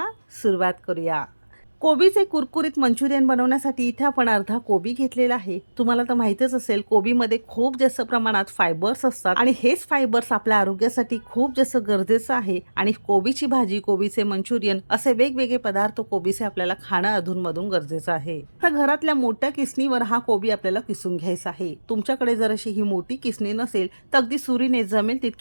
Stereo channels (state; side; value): inverted; both; correlation -1.00